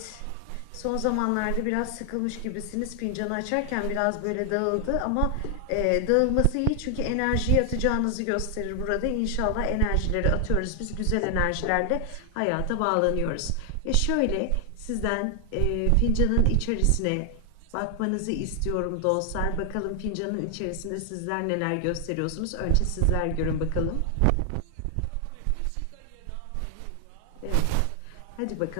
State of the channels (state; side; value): different; both; correlation 0.00